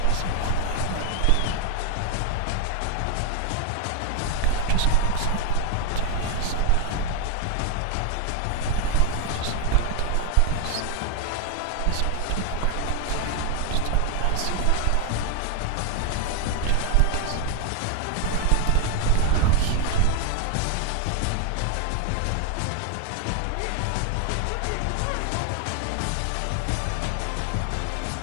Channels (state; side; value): different; both; correlation 0.00